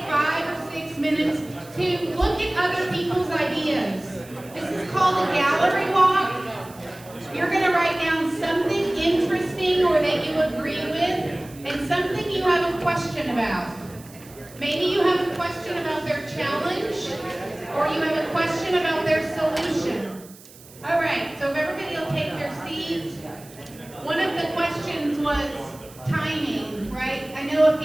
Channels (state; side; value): noise; right; hiss, 21 dB below the sound